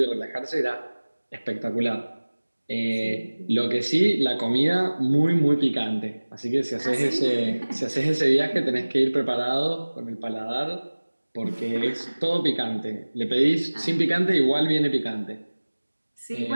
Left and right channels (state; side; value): inverted; both; correlation -1.00